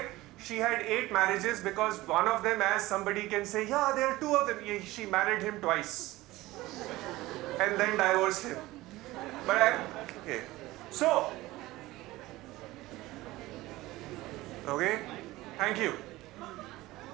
she had 8 marriages because one of them, as somebody can say, yeah, there are 2 of them. She married him twice and then divorced him. Okay. So, okay, thank you.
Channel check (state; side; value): quieter; left; 18.4 dB